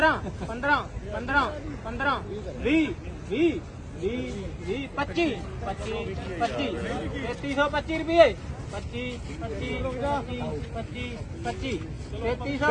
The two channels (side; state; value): both; identical; correlation 1.00